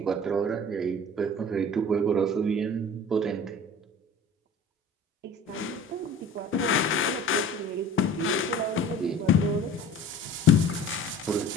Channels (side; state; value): both; normal; correlation 0.44